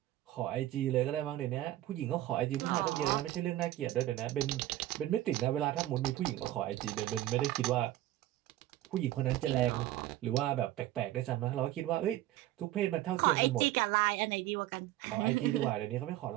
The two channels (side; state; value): left; quieter; 14.7 dB